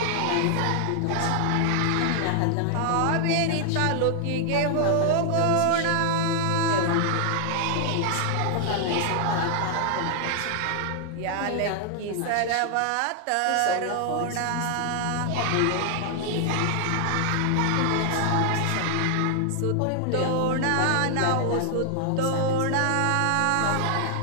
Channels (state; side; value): different; both; correlation 0.00